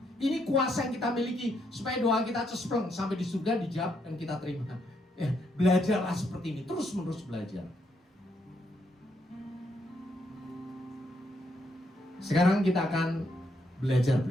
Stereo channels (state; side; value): normal; both; correlation 0.76